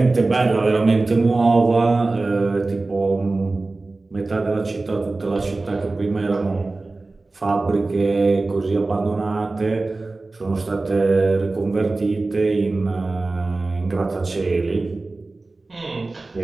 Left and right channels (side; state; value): left; quieter; 3.3 dB